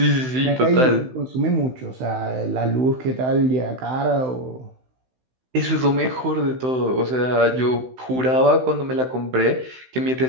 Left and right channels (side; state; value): left; late; 16 ms